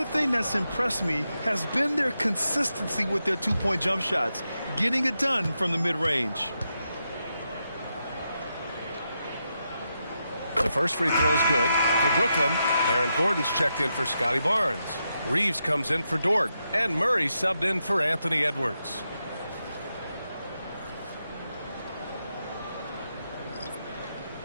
thing that's impressed me has been their consistency with their two-point jump shots, getting it done from the mid-range. The first free throw is good for Brooklyn. Aaron Gordon's checked in for Scotty Barnes. Reeves comes in for Dort. And Murray subbed in for Anthony Edwards.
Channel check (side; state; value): both; inverted; correlation -0.85